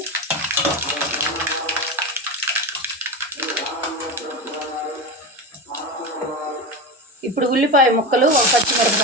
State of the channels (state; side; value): normal; both; correlation 0.21